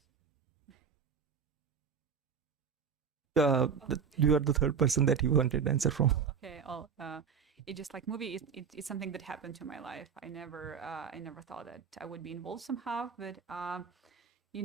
You are the third person that you wanted answer from. Okay. It just like movie. It's something that happened to my life. I never thought that I would be involved somehow, but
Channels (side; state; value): left; quieter; 6.5 dB